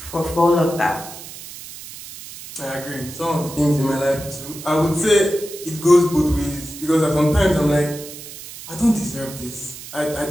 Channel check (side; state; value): right; noise; hiss, 14 dB below the sound